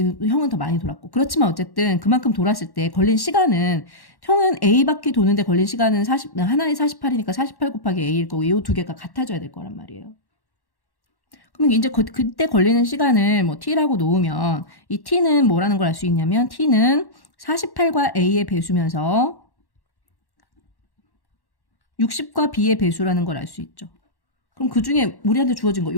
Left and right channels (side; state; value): right; late; 1.1 ms